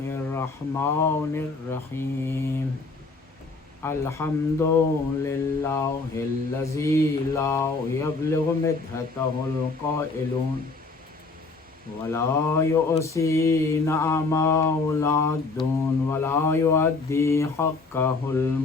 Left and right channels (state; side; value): quieter; right; 3.8 dB